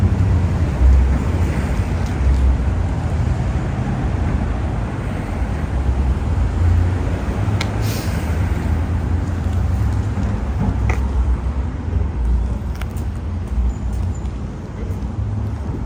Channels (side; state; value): both; identical; correlation 1.00